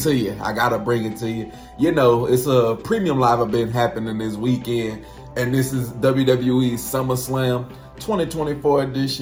you. I gotta bring it to you. You know, it's a premium live event happening this weekend, and this is WWE Summerslam 2024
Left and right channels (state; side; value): identical; both; correlation 1.00